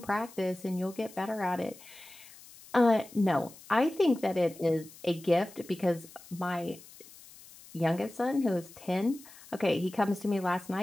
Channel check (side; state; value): left; noise; hiss, 20 dB below the sound